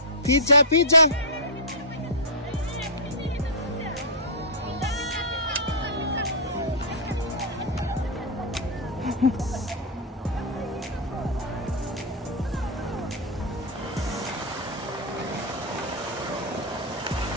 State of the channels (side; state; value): both; normal; correlation -0.11